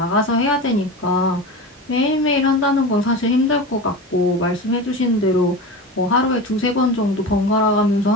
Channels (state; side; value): normal; both; correlation 0.27